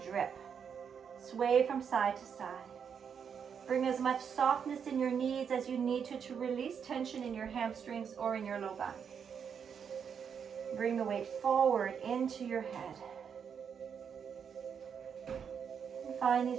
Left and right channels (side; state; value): left; quieter; 7.2 dB